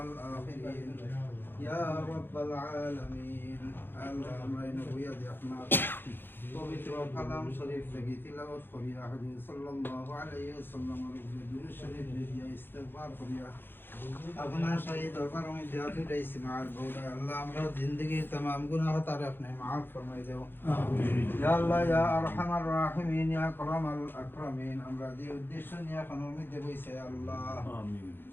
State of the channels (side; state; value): right; late; 0.10 ms